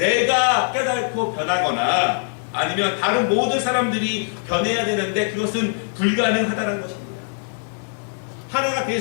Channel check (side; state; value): right; silent; 57 dB below the other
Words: 깨닫고 변하거나 아니면 다른 모든 사람들이 변해야 되는데 그것은 불가능하다는 것입니다. 하나가 될